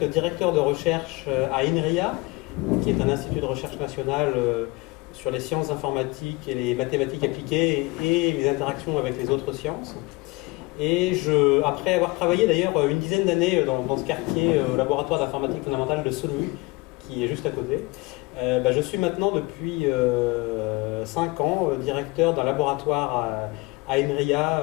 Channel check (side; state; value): right; quieter; 24.1 dB